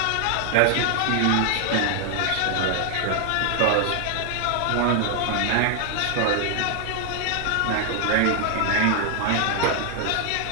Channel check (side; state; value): both; different; correlation 0.00